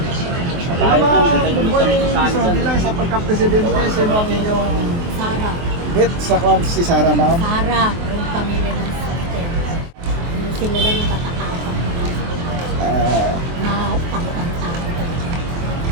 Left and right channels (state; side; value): late; left; 24 ms